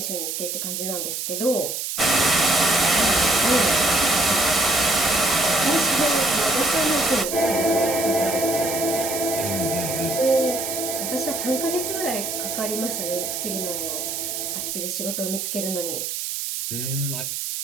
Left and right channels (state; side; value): noise; right; hiss, 4 dB below the sound